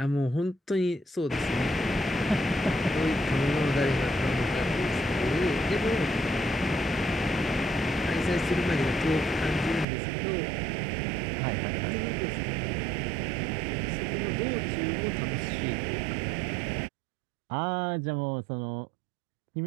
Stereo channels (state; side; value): drops out; left; at 9.9 s